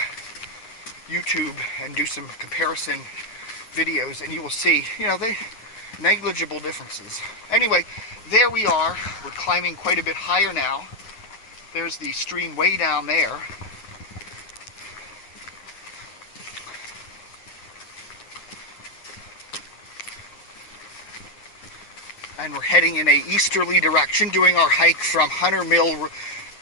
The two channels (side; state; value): right; late; 9.2 ms